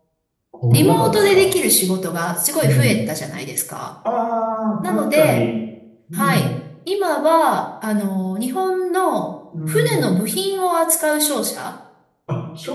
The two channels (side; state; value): both; identical; correlation 1.00